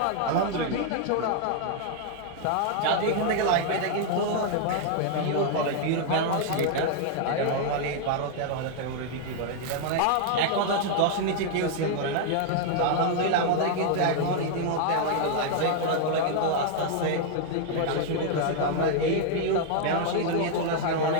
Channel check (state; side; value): different; both; correlation 0.00